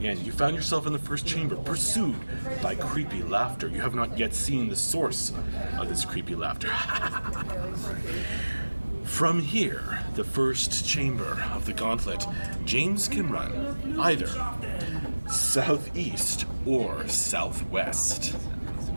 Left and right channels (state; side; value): inverted; both; correlation -1.00